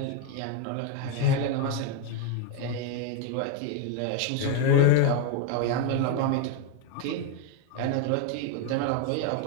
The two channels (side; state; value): both; different; correlation 0.01